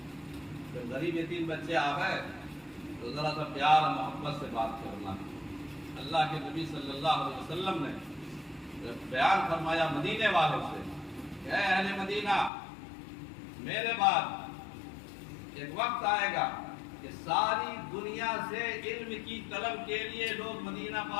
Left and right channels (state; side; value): drops out; right; at 12.5 s